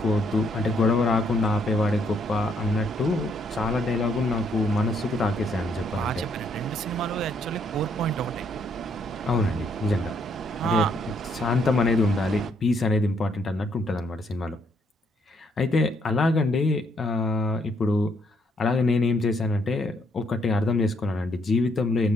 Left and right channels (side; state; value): both; normal; correlation 0.71